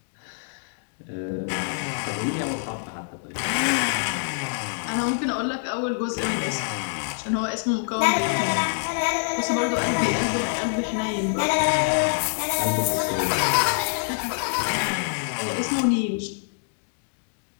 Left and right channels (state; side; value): silent; right; digital silence